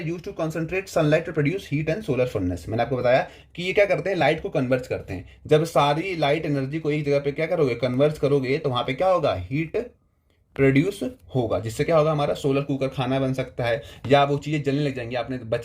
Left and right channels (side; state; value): both; identical; correlation 1.00